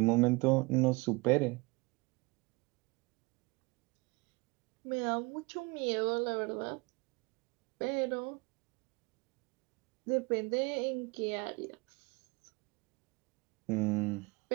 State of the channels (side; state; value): left; quieter; 26.2 dB